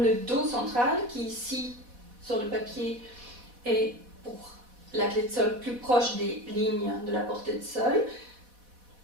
le Do central, qui ici sur le papier est pour la clé de sol plus proche des lignes de la portée de sol,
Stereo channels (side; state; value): left; late; 4.1 ms